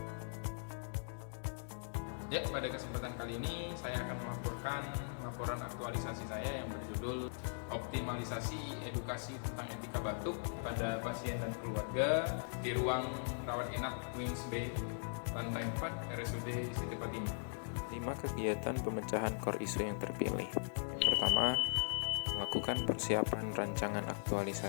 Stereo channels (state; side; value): silent; right; digital silence